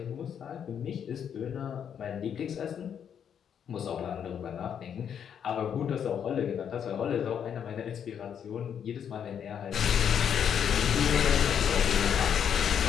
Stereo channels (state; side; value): quieter; right; 8.3 dB